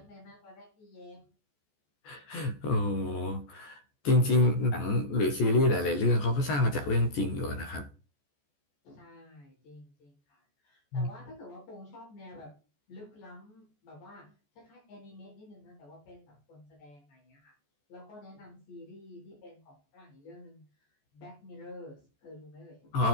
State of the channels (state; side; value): late; right; 14 ms